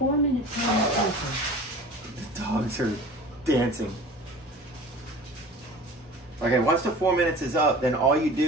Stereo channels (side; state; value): both; normal; correlation 0.40